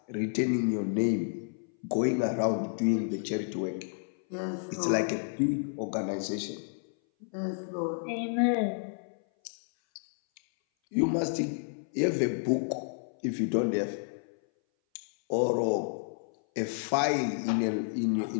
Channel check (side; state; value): right; silent; 57 dB below the other